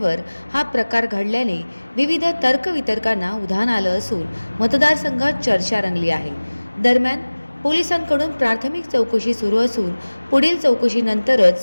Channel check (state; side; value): inverted; both; correlation -1.00